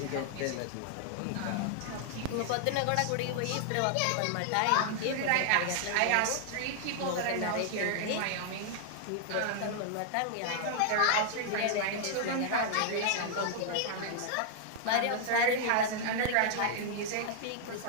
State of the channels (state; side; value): different; both; correlation 0.00